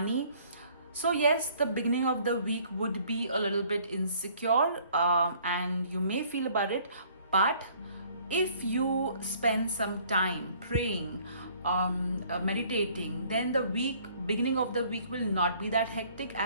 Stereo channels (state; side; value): inverted; both; correlation -0.58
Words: So yes, the beginning of the week would be a little bit insecure and you may feel about it, but if you spend some time praying, meditating, then the beginning of the week will not be that hectic,